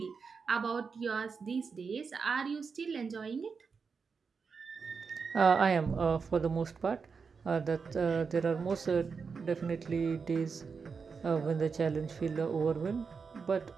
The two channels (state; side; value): quieter; left; 5.3 dB